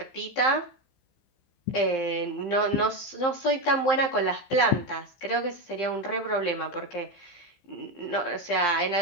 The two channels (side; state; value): right; late; 15 ms